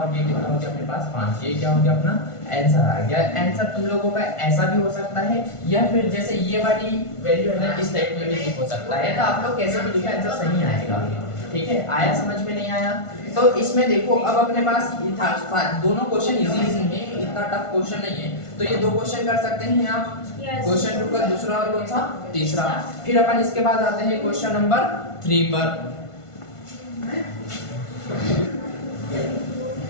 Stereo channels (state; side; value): late; right; 1.5 ms